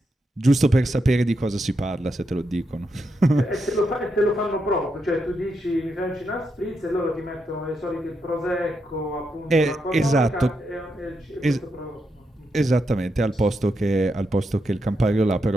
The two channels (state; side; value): normal; both; correlation 0.83